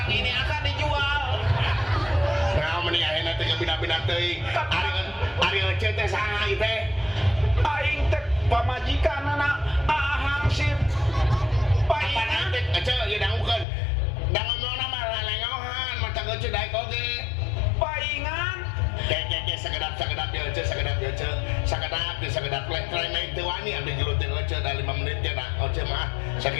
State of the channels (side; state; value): right; drops out; at 13.7 s